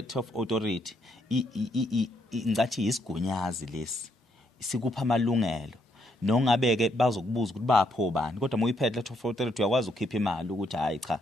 of authority ngathi isigunyazi lesi sikupha amalungelo nongabeke bazokubuza ukuthi bapho bani kodwa moyiphethe letter of authority uyakwazi ukukhipha imali ukuthi hayi cha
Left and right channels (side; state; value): both; normal; correlation 0.74